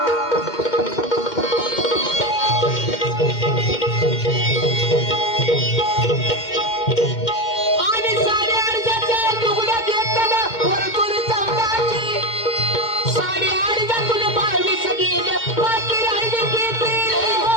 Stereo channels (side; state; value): right; late; 2.1 ms